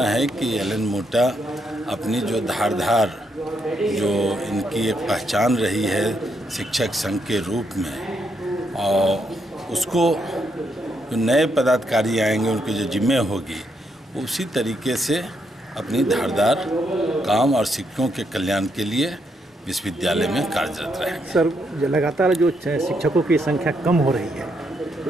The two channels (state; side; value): normal; both; correlation 0.77